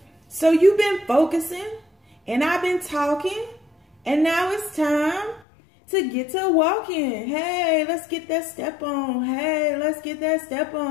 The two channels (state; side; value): drops out; right; at 5.5 s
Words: So you've been focusing. And I've been talking, and now it's time to get to walking. Hey, let's get that step on. Hey, let's get that step